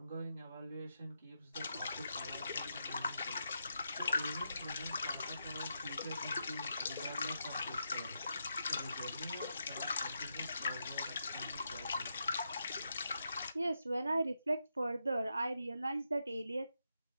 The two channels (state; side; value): inverted; both; correlation -0.84